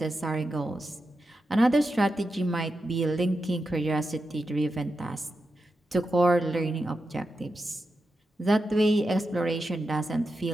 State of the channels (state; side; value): normal; both; correlation 0.89